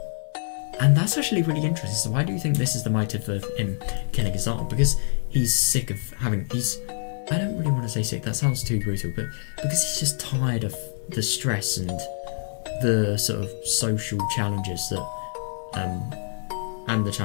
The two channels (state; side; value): silent; right; 61 dB below the other